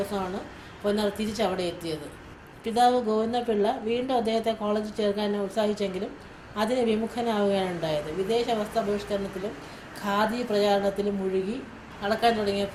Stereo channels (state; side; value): identical; both; correlation 1.00